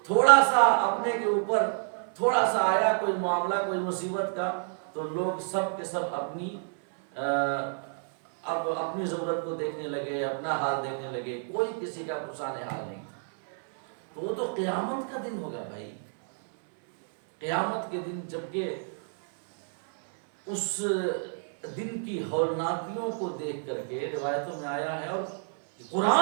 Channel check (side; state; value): left; silent; 58 dB below the other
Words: تھوڑا سا اپنے کے اوپر تھوڑا سا آیا کوئی معاملہ، کوئی مصیبت کا، تو لوگ سب کے سب اب اپنی ضرورت کو دیکھنے لگے، اپنا حال دیکھنے لگے، کوئی کسی کا پرسان حال نہیں تھا۔ تو وہ تو قیامت کا دن ہوگا بھائی، قیامت کے دن، جبکہ اس دن کی ہولناکیوں کو دیکھ کر کے روایتوں میں آیا ہے، اور